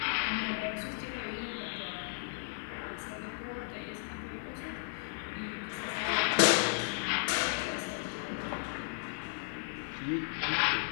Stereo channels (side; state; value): right; silent; 55 dB below the other